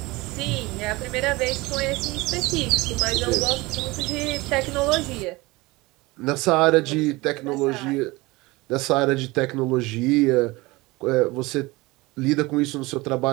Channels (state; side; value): quieter; left; 22.1 dB